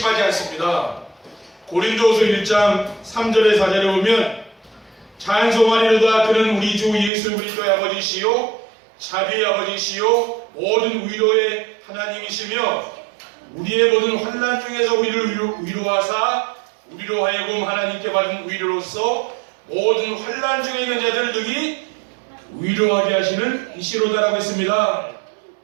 않습니다. 고린도후서 1장 3절에 4절에 보면 찬송하리로다 그는 우리 주 예수 그리스도의 아버지시요 자비의 아버지시요 모든 위로의 하나님이시며 우리의 모든 환난 중에서 우리를 위로하사 우리로 하여금 하나님께 받은 위로로서 모든 환난 중에 있는 자들을 능히 위로하게 하시는 이시로다라고 했습니다.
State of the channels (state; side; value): drops out; left; at 7.1 s